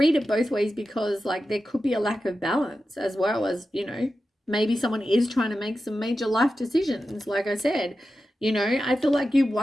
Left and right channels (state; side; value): normal; both; correlation 0.92